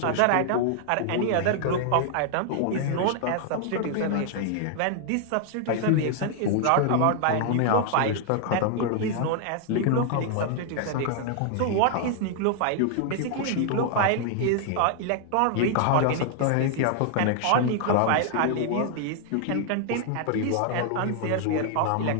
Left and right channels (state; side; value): different; both; correlation 0.00